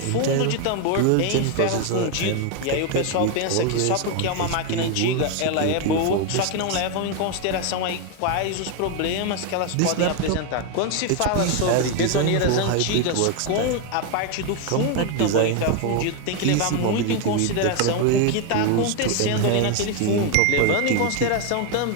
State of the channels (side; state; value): both; different; correlation 0.01